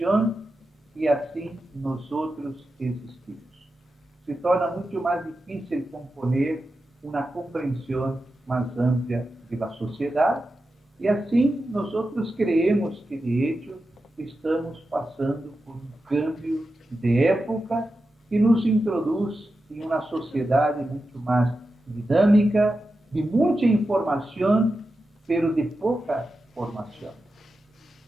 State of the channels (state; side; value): normal; both; correlation 0.91